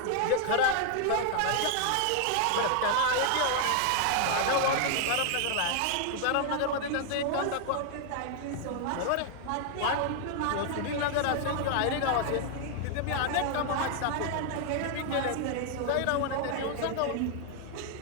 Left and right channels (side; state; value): both; different; correlation 0.00